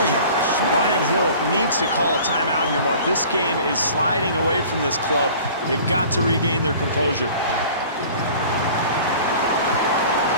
Brian Hill needs to call a timeout here, Mark. This game is sliding away from this club. They've got to regain their composure.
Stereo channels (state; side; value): inverted; both; correlation -0.45